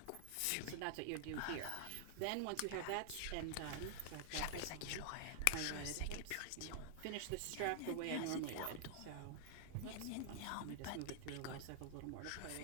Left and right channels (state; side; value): different; both; correlation 0.00